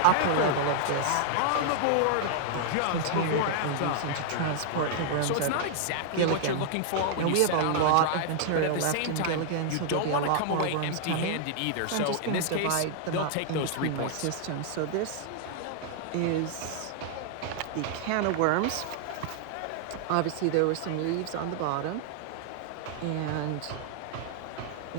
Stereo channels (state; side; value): different; both; correlation -0.01